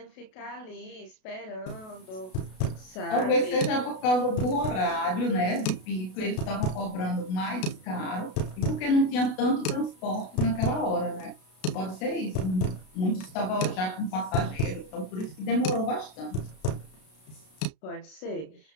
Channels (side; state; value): right; late; 32 ms